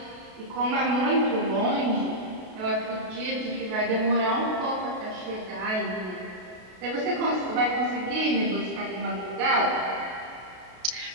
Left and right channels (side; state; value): left; late; 32 ms